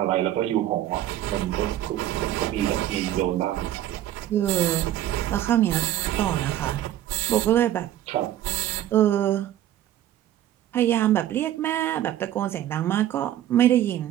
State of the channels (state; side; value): quieter; left; 12.5 dB